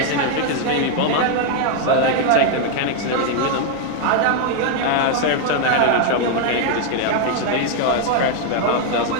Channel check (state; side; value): different; both; correlation 0.00